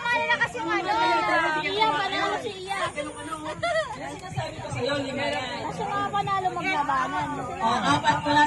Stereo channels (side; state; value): both; identical; correlation 1.00